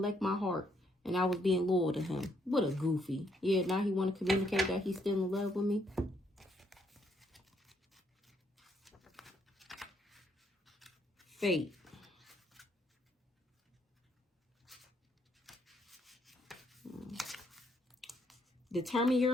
my heart. And I was being loyal to him. What a goofy. Yeah, now he want to communicate that he's still in love with me. Fate. Determine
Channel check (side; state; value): both; normal; correlation 0.71